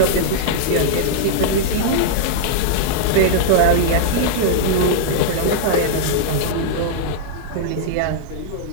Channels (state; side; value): different; both; correlation -0.01